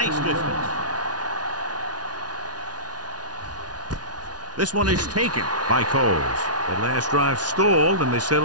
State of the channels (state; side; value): late; left; 0.69 ms